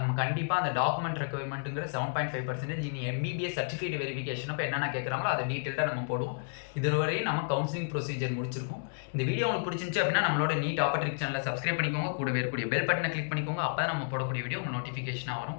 கண்டிப்பாக அந்த டாக்குமெண்ட் ரெக்குவயர்மெண்ட்டுங்கிற 7.5% இனி MBBS சர்டிஃபிகேட் வெரிஃபிகேஷன் அப்போ என்னென்ன கேட்குறாங்களோ அதை டீட்டெயில்டாக நம்ம போடுவோம். இதுவரையும் நம்ம கவுன்சிலிங் ப்ரொசீஜர் முடிச்சிருக்கோம். இந்த வீடியோ உங்களுக்கு பிடிச்சிருந்துச்சு அப்படின்னா நம்மளோட நீட் ஆப்பர்ட்ரிக் சேனலை சப்ஸ்கிரைப் பண்ணிக்கோங்க, கூட இருக்கக்கூடிய பெல் பட்டனை கிளிக் பண்ணிக்கோங்க. அப்போ தான் நம்ம போடக்கூடிய வீடியோ உங்கள் நோட்டிஃபிகேஷனாக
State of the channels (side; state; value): right; silent; digital silence